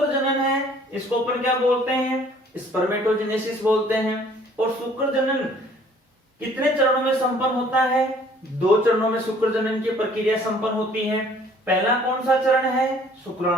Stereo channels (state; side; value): normal; both; correlation 0.57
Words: जनन है, इसको अपन क्या बोलते हैं? स्पर्मेटोजेनेसिस बोलते हैं। और शुक्र जनन कितने चरणों में संपन्न होता है? 2 चरणों में शुक्र जनन की प्रक्रिया संपन्न होती है। पहला कौन सा चरण है?